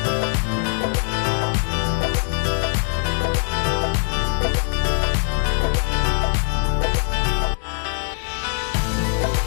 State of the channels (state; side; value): silent; right; 64 dB below the other